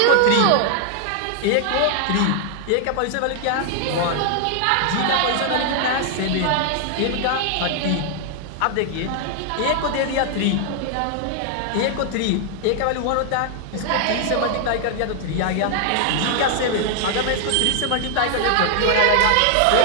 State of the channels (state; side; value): different; both; correlation 0.00